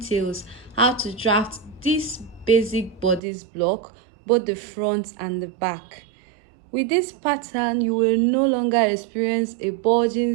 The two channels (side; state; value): left; drops out; at 3.2 s